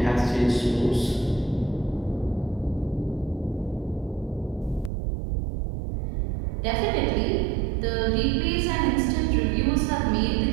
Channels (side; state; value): left; drops out; at 4.9 s